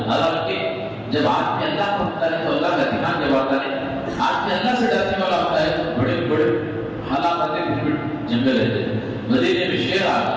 حالانکہ جب آدمی اللہ کو ہوتا ہے تو اللہ کا دھیان جب آتا ہے، آدمی اللہ سے ڈرنے والا ہوتا ہے تو بڑے بڑے حالات آتے پھر جنگل رہتے ہیں۔ مدینے میں شیر آ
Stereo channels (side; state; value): both; identical; correlation 1.00